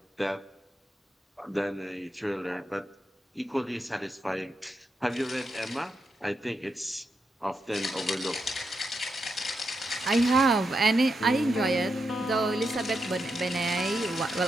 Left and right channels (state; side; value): normal; both; correlation 0.84